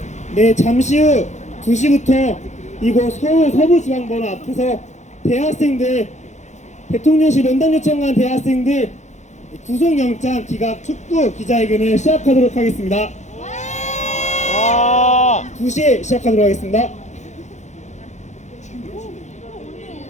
네, 잠시 후 2시부터 이곳 서울 서부지방번호 앞에서 대학생들, 대통령실 면담 요청한 대학생들 구속영장 기각 촉구 기자회견을 시작하도록 하겠습니다. 2시에 시작하도록 하겠습니다.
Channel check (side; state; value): right; late; 0.34 ms